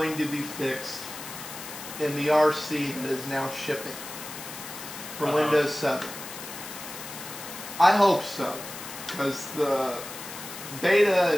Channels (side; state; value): left; noise; hiss, 11 dB below the sound